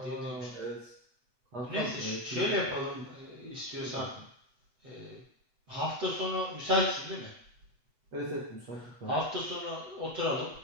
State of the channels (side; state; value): left; late; 8.1 ms